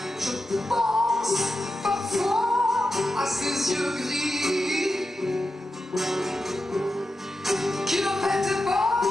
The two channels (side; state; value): both; normal; correlation 0.90